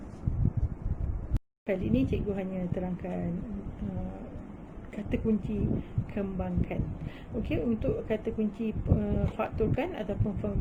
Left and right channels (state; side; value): identical; both; correlation 1.00